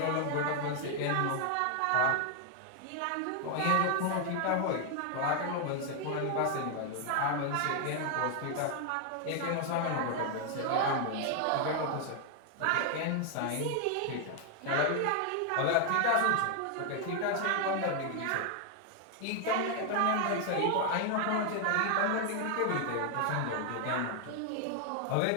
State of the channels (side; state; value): both; different; correlation 0.00